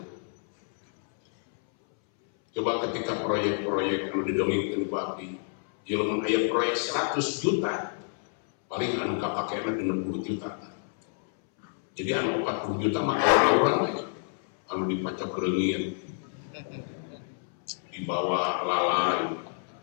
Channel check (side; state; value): right; silent; 59 dB below the other